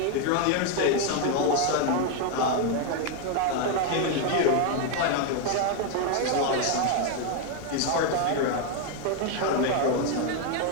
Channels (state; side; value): different; both; correlation 0.01